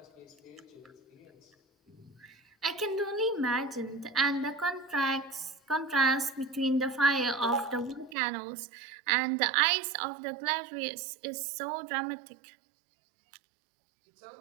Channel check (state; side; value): drops out; left; at 8.2 s